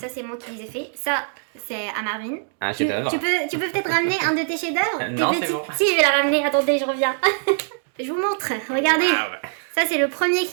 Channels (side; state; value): left; silent; digital silence